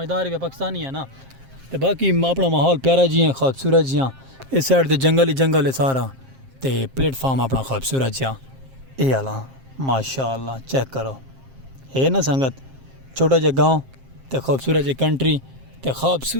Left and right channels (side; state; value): left; late; 7.5 ms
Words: भी पाकिस्तानी है ना। तो बाकी अपना माहौल प्यारा जी है खूबसूरत जिहा इस साइड तो जंगल ही जंगल है सारा तो प्लेटफॉर्म अपना खूबसूरत जिहा ये आला माशाअल्लाह चेक करो है ना संगत। छोटा जहा गाँव तो खूबसूरत जी कंट्री तो